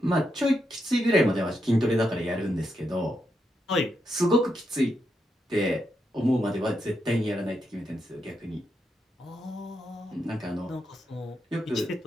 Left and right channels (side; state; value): both; normal; correlation 0.83